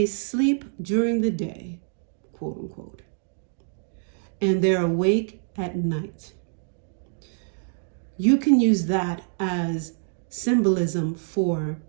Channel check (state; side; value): silent; left; digital silence